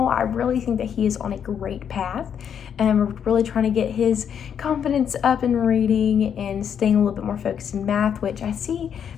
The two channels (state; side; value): quieter; right; 8.2 dB